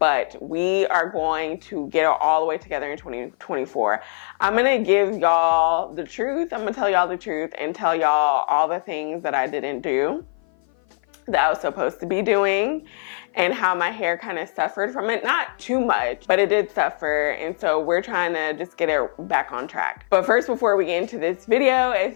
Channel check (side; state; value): right; silent; 56 dB below the other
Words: we are going to get it all the way together in 2024. I'm gonna give y'all the truth. I'm gonna tell y'all the truth and tell y'all all the things that I didn't do that I was supposed to be doing, and how my hair kind of suffered from it. Not too much, but it did suffer, and so we're trying to just get it back on track. But first, before we get into this video,